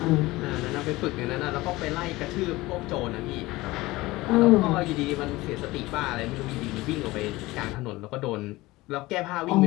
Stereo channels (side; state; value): right; quieter; 19.8 dB